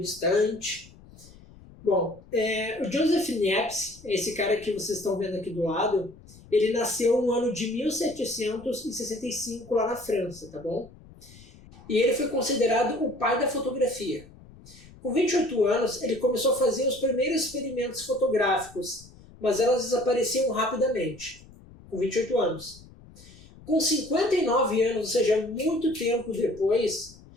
Bom, o Joseph Niepce, esse cara que vocês estão vendo aqui do lado, ele nasceu no ano de 1765 lá na França, tá bom? E ele foi considerado o pai da fotografia. Com 28 anos, ele começou a fazer os primeiros experimentos fotográficos, mas elas desapareciam rapidamente, com 28 anos. Com 59 anos, ou seja, muito tempo depois,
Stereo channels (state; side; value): noise; left; rumble, 22 dB below the sound